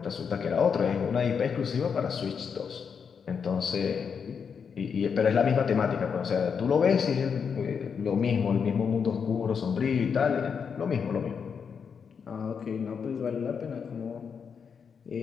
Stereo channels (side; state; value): right; quieter; 6.5 dB